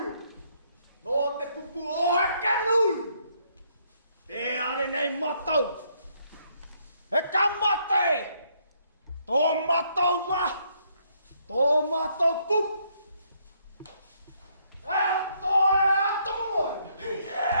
No te pupu o kanu. E are nei matau. E kamate. To matau ma. To matau pup. E to e atomo.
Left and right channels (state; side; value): inverted; both; correlation -0.71